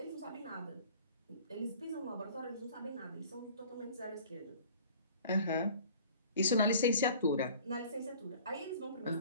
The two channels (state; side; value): inverted; both; correlation -0.47